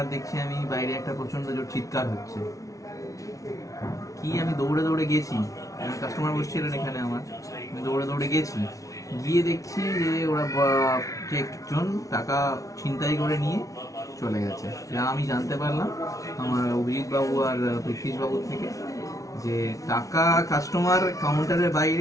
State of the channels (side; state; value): right; late; 0.16 ms